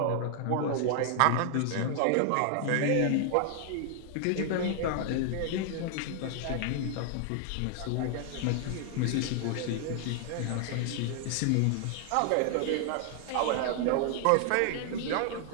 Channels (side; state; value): both; different; correlation 0.00